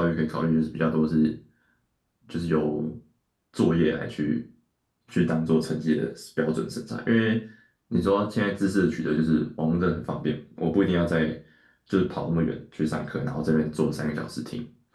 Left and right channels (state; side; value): identical; both; correlation 1.00